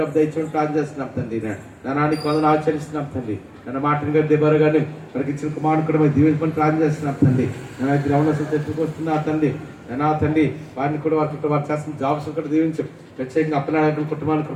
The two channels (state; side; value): identical; both; correlation 1.00